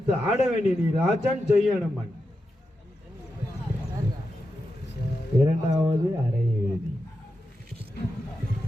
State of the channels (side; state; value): both; normal; correlation 0.88